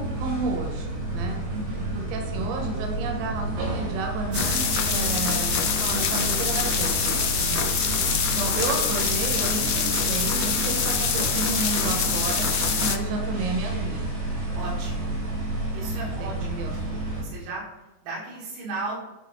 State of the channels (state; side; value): late; left; 23 ms